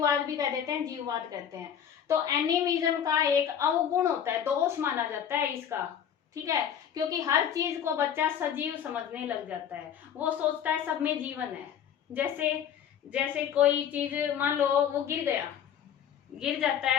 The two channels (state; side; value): quieter; right; 8.8 dB